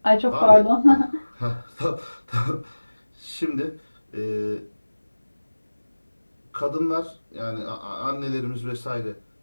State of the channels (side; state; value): both; inverted; correlation -1.00